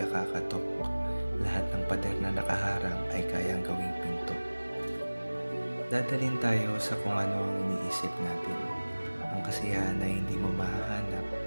kakatok. Lahat ng pader na nakaharang ay kayang gawing pinto. Dadalhin tayo sa kung ano ang iniisip natin. Ang kasiyahan ay hindi mo mahahanap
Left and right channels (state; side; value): inverted; both; correlation -1.00